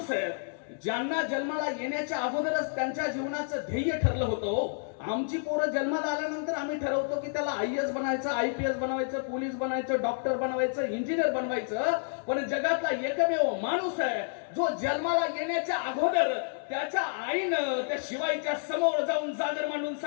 आहे ज्यांना जन्माला येण्याच्या अगोदरच त्यांच्या जीवनाचं ध्येय ठरलं होतं. आमची पोरं जन्माला आल्यानंतर आम्ही ठरवतो की त्याला IAS बनायचं, IPS बनवायचं, पोलीस बनायचं, डॉक्टर बनवायचं, इंजिनियर बनवायचं, पण जगातला एकमेव माणूस आहे जो जन्माला येण्याच्या अगोदर त्याच्या आईनं त्या शिवाईच्या समोर जाऊन जागर मांडून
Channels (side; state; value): right; silent; digital silence